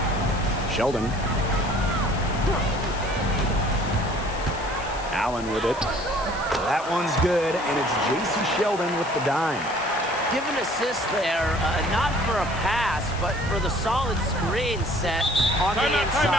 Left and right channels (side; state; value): left; noise; hiss, 16 dB below the sound